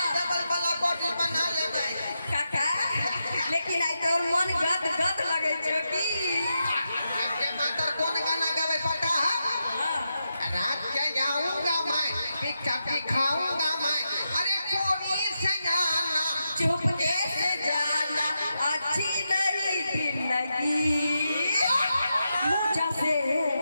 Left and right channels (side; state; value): both; inverted; correlation -0.86